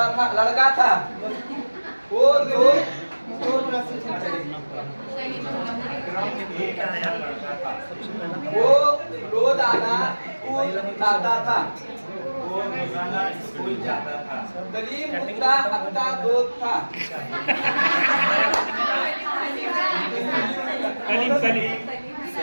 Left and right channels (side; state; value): both; inverted; correlation -1.00